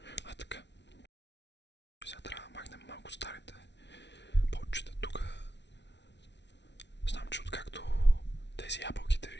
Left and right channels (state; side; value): late; right; 0.51 ms